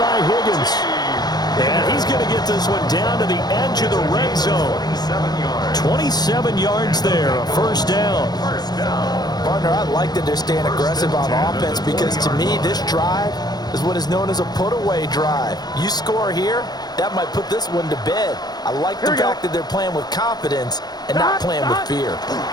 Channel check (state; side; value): late; right; 0.19 ms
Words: Higgins. And he's going to get this one down to the edge of the red zone. 27 yards there, a first down. Partner, I like that they're staying aggressive on offense because to me, this drive is what is known as a put-away drive. You score here, that might put this one to bed. I like the fact that they're playing with confidence and not playing with fear.